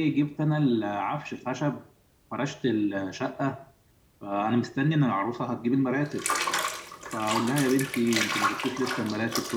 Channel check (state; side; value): identical; both; correlation 1.00